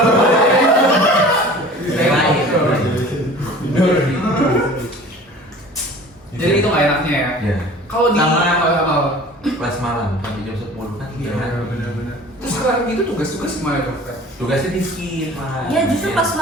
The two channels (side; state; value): both; normal; correlation 0.44